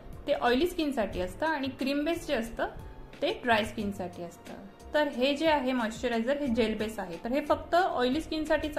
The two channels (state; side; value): identical; both; correlation 1.00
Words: ते ऑइली स्किनसाठी असतं आणि क्रीम बेस जे असतं ते ड्राय स्किनसाठी असतं। तर हे जे आहे मॉइश्चरायझर हे जेल बेस आहे, तर हे फक्त ऑइली स्किनसाठीच